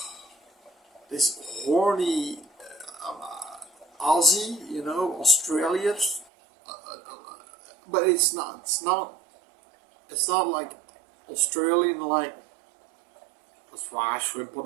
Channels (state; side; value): drops out; left; at 6.2 s